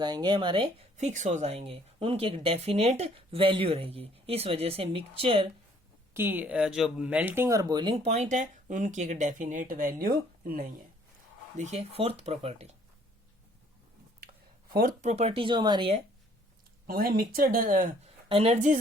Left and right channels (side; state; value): both; normal; correlation 0.60